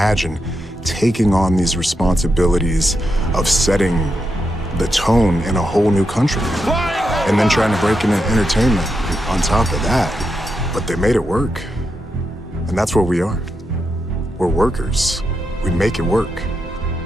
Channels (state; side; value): normal; both; correlation 0.85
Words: taking on these responsibilities of setting the tone in a whole new country. And then trying to break into entertainment on top of that. But they made it work. And that's what we are. We're workers. We make it work.